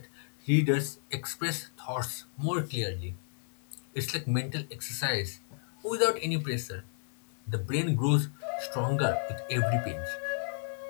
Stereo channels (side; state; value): right; silent; 56 dB below the other